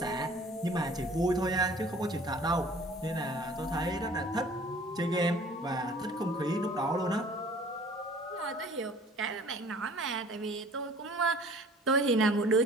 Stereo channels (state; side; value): normal; both; correlation 0.50